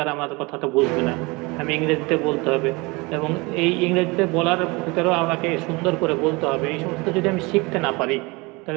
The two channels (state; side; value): quieter; left; 25.6 dB